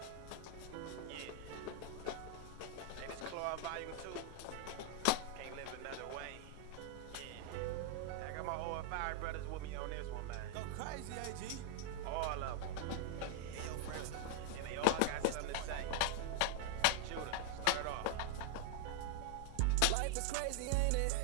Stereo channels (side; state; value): both; different; correlation -0.01